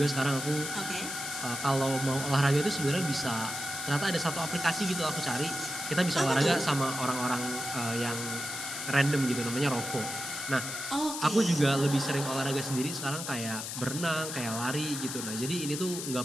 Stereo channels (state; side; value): noise; left; hiss, 6 dB below the sound